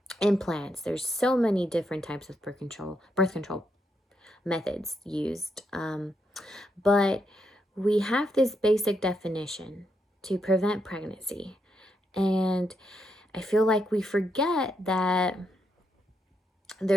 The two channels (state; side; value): normal; both; correlation 0.80